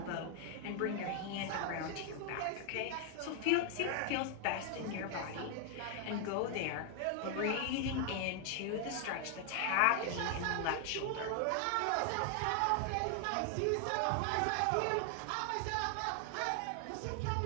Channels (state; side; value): different; both; correlation 0.00